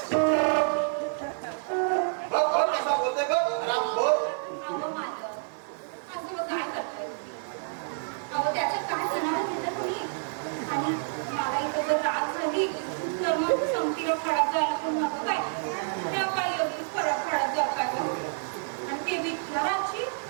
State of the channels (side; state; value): left; silent; 59 dB below the other